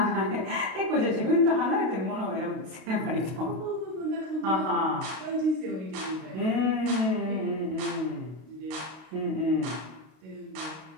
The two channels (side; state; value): left; late; 32 ms